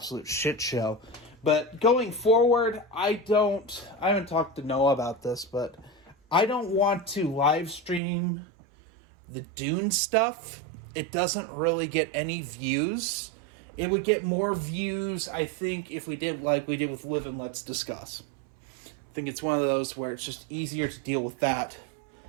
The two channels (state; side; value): drops out; left; at 8.0 s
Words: shit show. But going forward, I haven't talked to Noah about this, but I don't want to live stream the Dune stuff. It doesn't really get any views. It would get more views, I think, if we did like we did with Live and Let's Discuss. I think it's one of those where it's just easier to deal with that